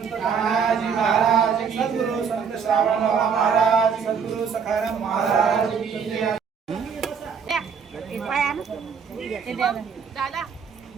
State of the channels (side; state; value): left; quieter; 6.5 dB